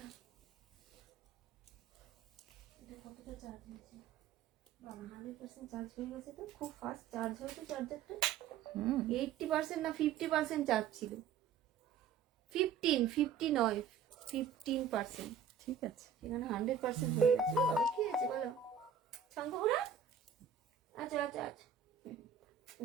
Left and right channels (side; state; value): left; quieter; 7.6 dB